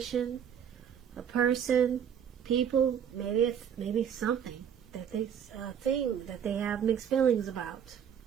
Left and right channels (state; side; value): quieter; left; 8.4 dB